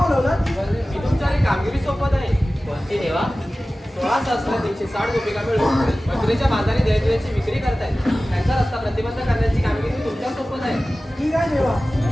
मी तुमच्याकडे कामगिरी सोपत आहे. कोणती देवा? 16,360 गोपिका मिळून मथुरेच्या बाजारी दैनदिवाची विक्री करतायत. त्यांचा रस्ता प्रतिबंध करण्याची कामगिरी तुमच्या सोपत आहे. ठीक आहे देवा,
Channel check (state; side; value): normal; both; correlation 0.96